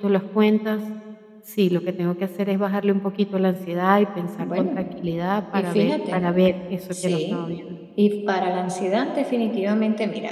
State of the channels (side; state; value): both; identical; correlation 1.00